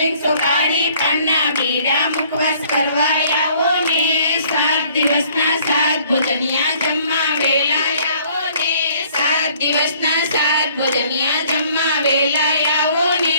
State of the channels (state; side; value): inverted; both; correlation -0.59